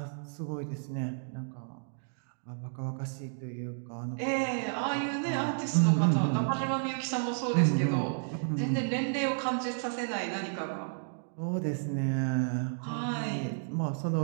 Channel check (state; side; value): silent; left; digital silence